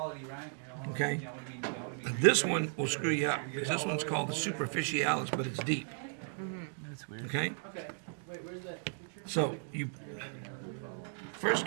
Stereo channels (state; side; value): silent; left; 54 dB below the other